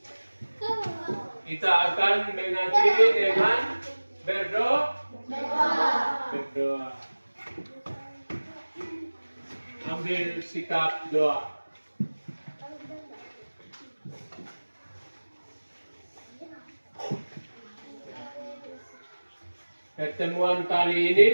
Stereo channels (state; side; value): inverted; both; correlation -1.00